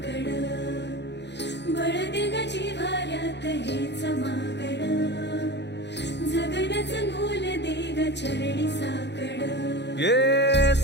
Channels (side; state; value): right; late; 0.50 ms